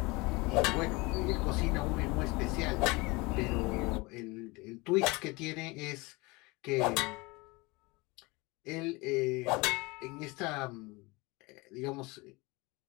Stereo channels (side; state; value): right; quieter; 24.6 dB